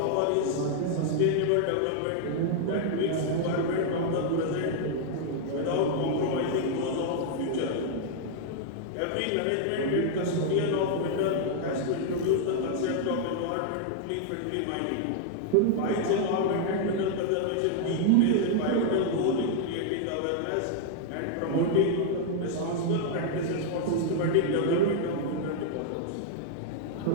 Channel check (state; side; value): different; both; correlation 0.00